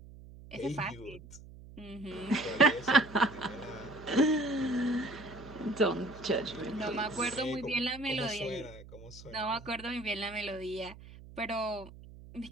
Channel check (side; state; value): right; noise; hum, 17 dB below the sound